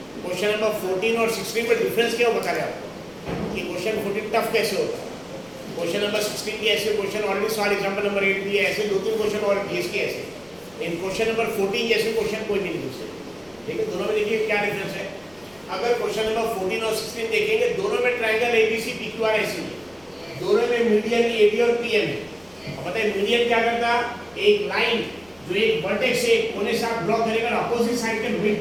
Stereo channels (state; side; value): noise; left; rumble, 29 dB below the sound